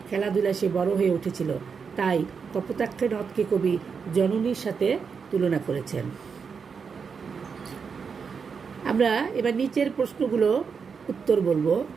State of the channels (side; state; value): left; quieter; 5.9 dB